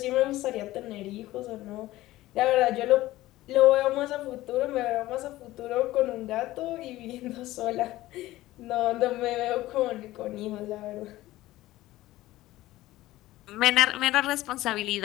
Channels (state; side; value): quieter; right; 16.7 dB